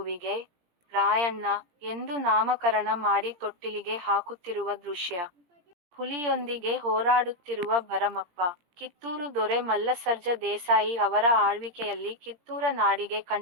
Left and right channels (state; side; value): late; left; 17 ms